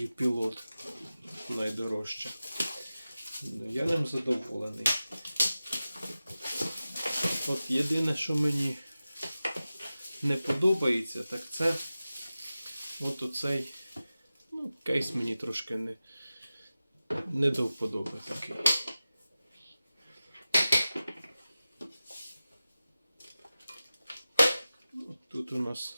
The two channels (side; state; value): both; inverted; correlation -0.95